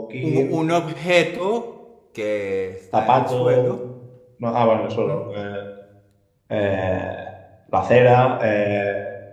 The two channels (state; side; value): identical; both; correlation 1.00